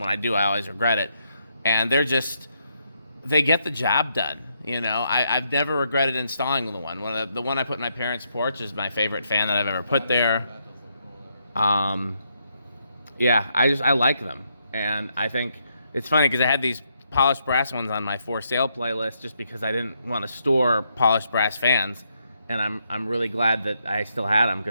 I do, I always regret it. And they get the job done. You know, I've never regretted installing the one. The one I put in my parents' porch is my favorite fan that I've ever put there. That does look cool there. Yeah, I like them, and I think it's funny because I had these polished brass ones on my for sale playlist just because I didn't want to store polished brass fans, and I'm really glad that I still had them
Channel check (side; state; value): both; inverted; correlation -0.77